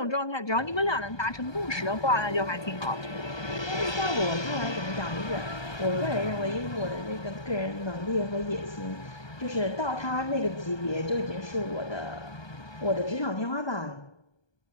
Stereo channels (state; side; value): late; right; 1.2 ms